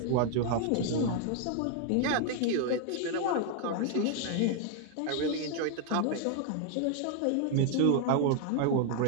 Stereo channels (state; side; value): different; both; correlation 0.00